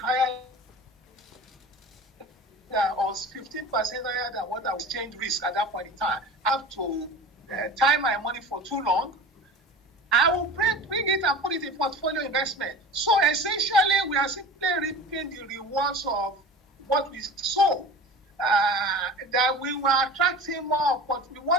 or 15% higher than what I was exchange risk at that point in time. I have to time my money for too long. I will bring it and put it in portfolio investment. So essentially, we are simply reaping the rewards of what we sow. That we were attracting we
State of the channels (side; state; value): both; normal; correlation 0.36